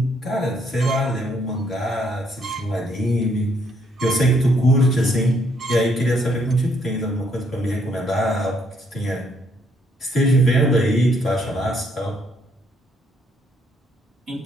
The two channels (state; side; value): normal; both; correlation 0.70